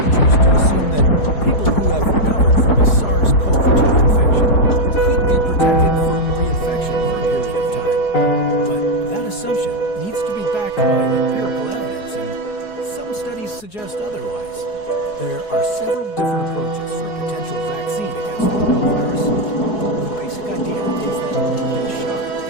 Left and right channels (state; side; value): late; right; 4.7 ms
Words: to assume that people who have recovered from a SARS-CoV-2 infection could be protected from reinfection for a period of time. But that assumption needs to be backed by empirical evidence, and some studies suggest otherwise. There are several different approaches for a potential vaccine against the coronavirus. The basic idea is that you get a shot